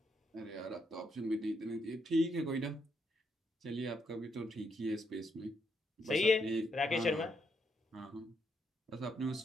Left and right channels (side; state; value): both; normal; correlation 0.77